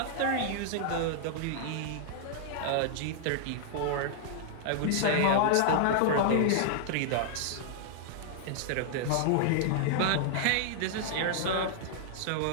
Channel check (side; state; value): both; different; correlation -0.01